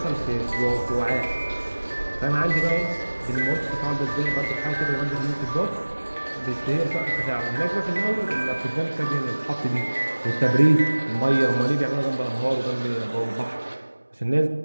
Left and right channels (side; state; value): both; inverted; correlation -1.00